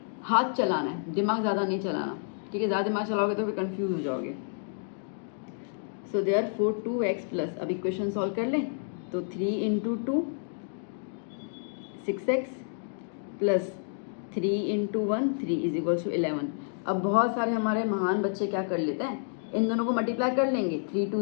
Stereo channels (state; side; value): silent; right; digital silence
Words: हाथ चलाना है, दिमाग ज़्यादा नहीं चलाना, ठीक है। ज़्यादा दिमाग चलाओगे तो फिर कंफ्यूज हो जाओगे। सो देयरफॉर 2x प्लस, अब इक्वेशन सॉल्व कर लें, तो 3 into 2 6x plus 3 into 1 3 is equals to 11। अब बहुत सारे हमारे महान बच्चे क्या कर लेते हैं, इन दोनों को मल्टीप्लाई कर लेंगे, 3